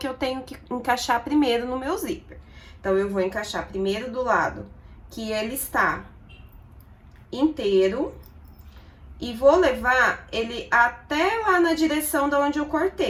eu tenho que encaixar primeiro no meu zíper. Então, eu vou encaixar primeiro do lado que ele está inteiro. E vou levar ele até lá na direção da onde eu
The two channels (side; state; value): both; identical; correlation 1.00